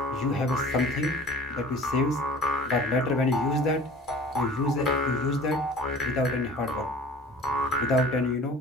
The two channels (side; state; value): both; normal; correlation 0.44